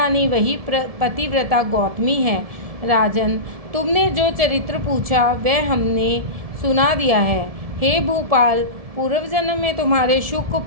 वही पतिव्रता गौतमी है। राजन, तुमने जो चरित्र पूछा वह हमने सुना दिया है। हे भूपाल, पूर्व जन्म में तुम्हारे शुक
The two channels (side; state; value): left; late; 1.7 ms